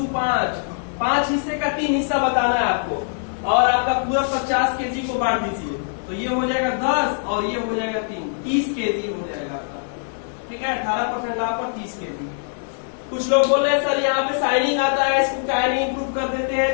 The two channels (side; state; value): right; silent; digital silence